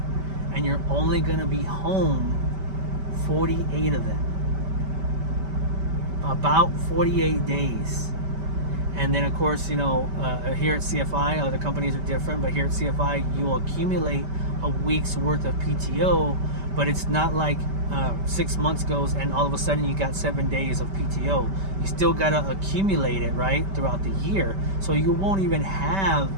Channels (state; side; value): late; left; 5.2 ms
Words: and you're only going to be home 48 of them. About 48 days. And then, of course, here at CFI, other companies are different, but here at CFI, you will accumulate a week's worth of PTO, but it's not like 6 months goes and all of a sudden you got 7 days of PTO. You still got to accumulate it, right, throughout the year. So you won't even have